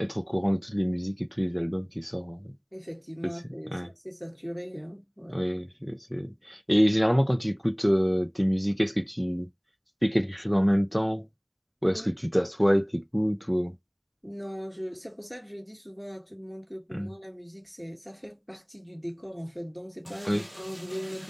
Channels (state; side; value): identical; both; correlation 1.00